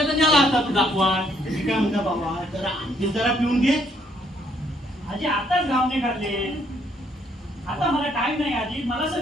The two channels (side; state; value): both; normal; correlation 0.69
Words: नेला असता तू दाखवा काय म्हणता बाबा जरा पिऊन घे आजी आताच गावने काढले आता मला टाइम नाही आजी मला